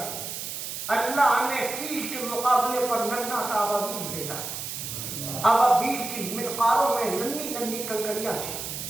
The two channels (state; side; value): noise; right; hiss, 6 dB below the sound